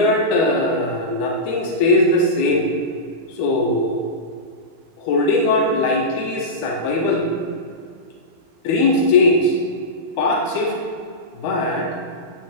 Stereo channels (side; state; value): right; late; 13 ms